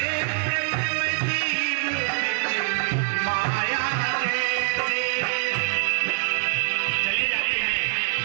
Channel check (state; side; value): quieter; left; 39.3 dB